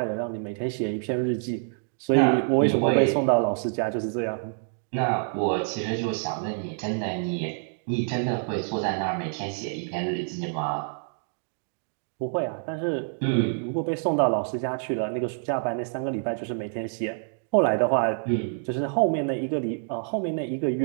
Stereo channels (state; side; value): silent; left; digital silence